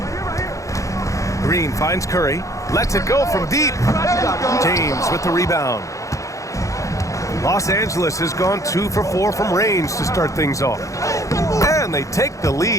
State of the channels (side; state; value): right; late; 0.15 ms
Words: Green finds Curry. Lets it go from deep. James with the rebound. Los Angeles has gone 2 for 4 from range to start things off. And they take the